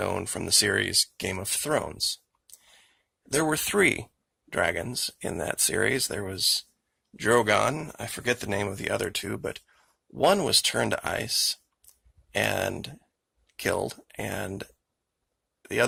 from the series Game of Thrones. There were 3 dragons in that series. There was Drogon, I forget the name of the other 2, but one was turned to ice and killed, and the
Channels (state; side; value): identical; both; correlation 1.00